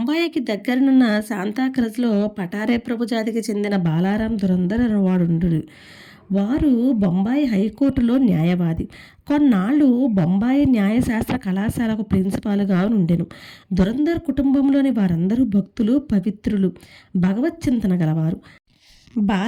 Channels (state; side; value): identical; both; correlation 1.00